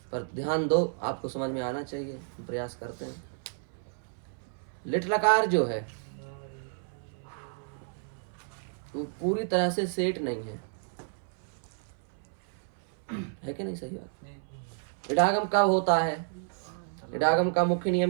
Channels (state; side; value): silent; left; 57 dB below the other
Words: पर ध्यान दो, आपको समझ में आना चाहिए, प्रयास करते हैं। लिट लकार जो है वो पूरी तरह से सेठ नहीं है कि नहीं? सही बात। इडागम कब होता है? इडागम का मुख्य